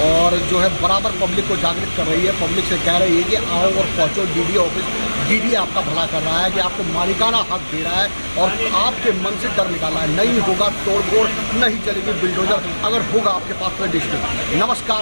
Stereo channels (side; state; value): both; inverted; correlation -1.00